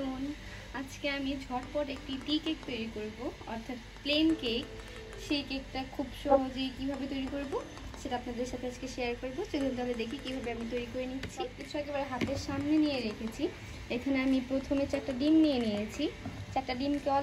আজকে আমি ঝটপট একটি টি কেক তৈরি করব, অর্থাৎ প্লেন কেক। সেই কেকটা খুব সহজেই কিভাবে তৈরি করব সেটা আপনাদের সাথে আজকে শেয়ার করব। চলুন তাহলে দেখি কিভাবে আমি তৈরি করে নিচ্ছি। সব কিছু একেবারে হাতের সামনে নিয়ে রেখেছি। এখানে আমি প্রথমে 4টা ডিম নিয়ে নিয়েছি। 4টা ডিমকে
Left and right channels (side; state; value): both; identical; correlation 1.00